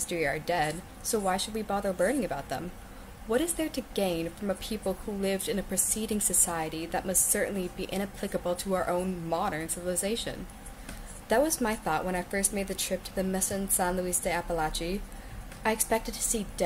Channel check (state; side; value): identical; both; correlation 1.00